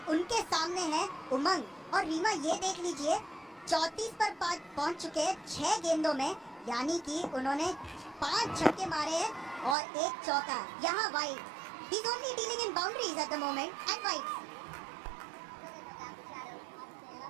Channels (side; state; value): left; drops out; at 9.8 s